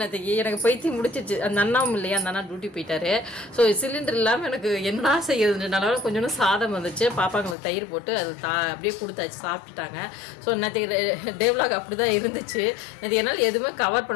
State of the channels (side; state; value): right; drops out; at 7.6 s